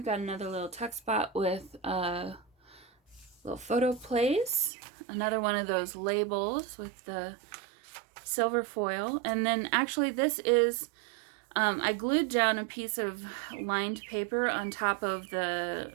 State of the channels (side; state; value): left; drops out; at 4.7 s